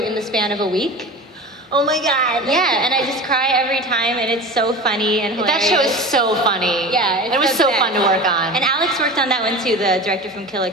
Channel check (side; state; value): both; normal; correlation 0.32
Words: the span of a week. Oh my God. Yeah, and I just cry every time, and it's so funny and hilarious. That show is so funny. Yeah, it was so fun to work on. And Alex worked on that one too, the director from Kill la